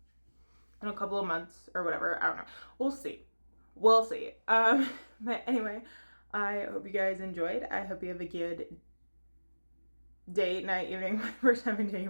in a couple of months or whatever. I don't know. We'll see. We'll see. But anyway, I hope you guys enjoyed. I hope you have a good day, night, evening, whatever time of day you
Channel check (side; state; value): both; inverted; correlation -1.00